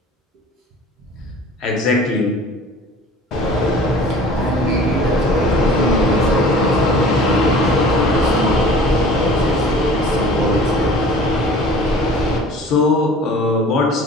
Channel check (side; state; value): both; normal; correlation 0.45